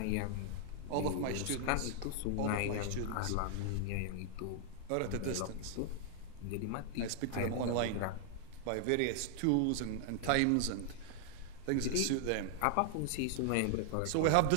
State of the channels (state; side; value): different; both; correlation 0.00